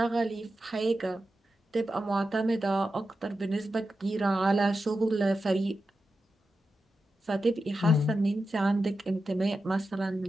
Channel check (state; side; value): normal; both; correlation 0.90